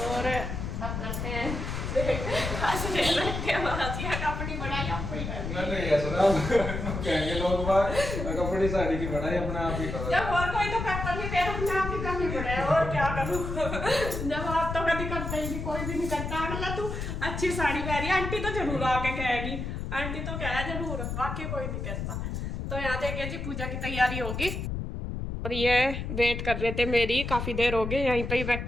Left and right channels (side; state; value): left; noise; rumble, 4 dB below the sound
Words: अब करते हैं अपनी बढ़ाई आपको ही कहेंगे लोग अपनी साड़ी की बढ़ाई अपने आप ही करो। जब और कोई तो करता नहीं, फिर अपने आप ही करनी पड़े, और क्या करूँ। जब आप तो कभी करते ही नहीं, कोई भी नहीं करता। अगला तू अच्छी साड़ी पहनी, आंटी तो जरूर आके कहेगी, आंटी तो कह जरूर, बाकी कोई नहीं कहता। तो यहाँ देखिए जी पूजा की तैयारी होगी। और ये वेट कर रहे थे मेरी, काफ़ी देर हो गई यहीं पे ही